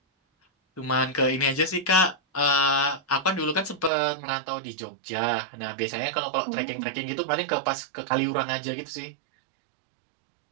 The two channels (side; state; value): left; drops out; at 3.9 s